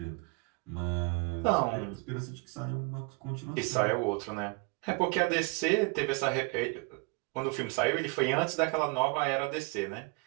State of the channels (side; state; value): left; quieter; 31.8 dB